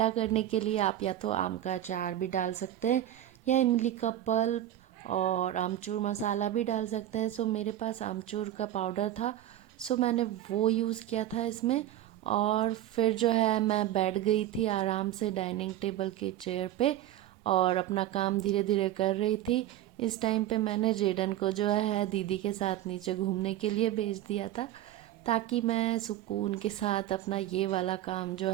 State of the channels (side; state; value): left; quieter; 12.8 dB